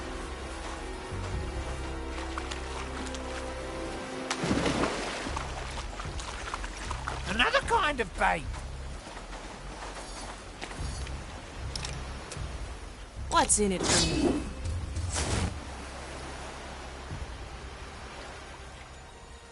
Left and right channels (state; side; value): identical; both; correlation 1.00